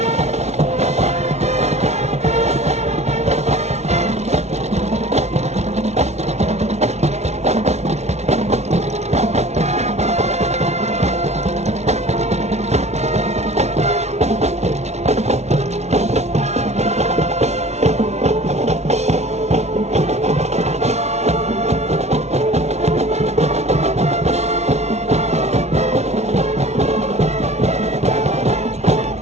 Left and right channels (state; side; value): late; left; 0.32 ms